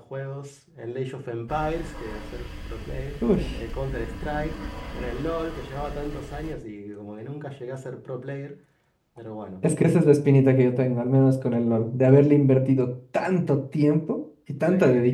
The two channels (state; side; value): identical; both; correlation 1.00